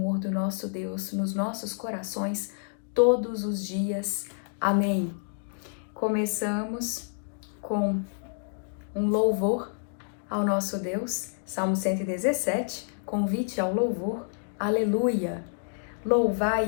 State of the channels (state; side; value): silent; right; digital silence